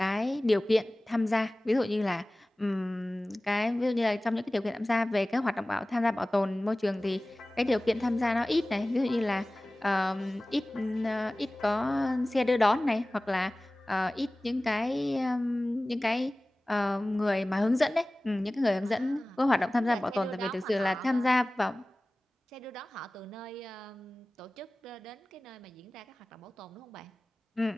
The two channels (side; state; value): both; normal; correlation 0.98